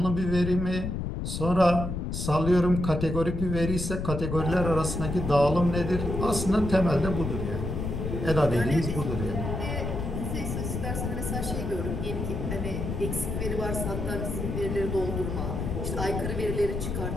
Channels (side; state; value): left; noise; rumble, 3 dB below the sound